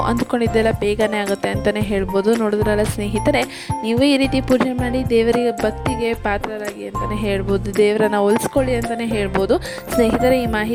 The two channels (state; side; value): identical; both; correlation 1.00